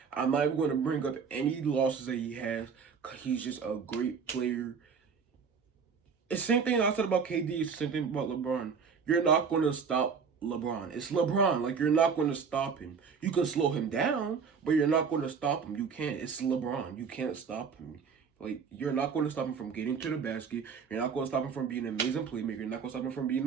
I'm not even going to bring up any losses that he has, because he's just a great player. It's the same thing I said about KD. It's the same thing about LeBron. You're not going to stop LeBron. It's LeBron. Like, you're not going to stop him. You can slow him down, but you're not going to stop him. You can't. It's LeBron. You can't stop him. Like, you're not going to stop him from getting to the basket. You're not going to stop him from being an amazing playmaker. You're not going to stop him from being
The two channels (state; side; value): quieter; left; 6.0 dB